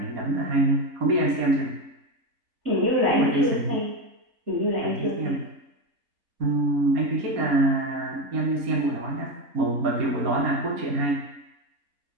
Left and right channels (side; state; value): left; late; 4.2 ms